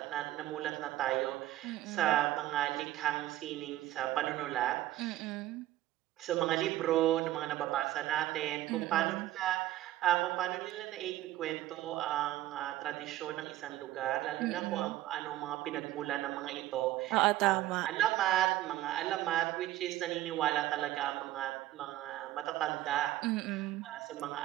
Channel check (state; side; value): quieter; left; 15.0 dB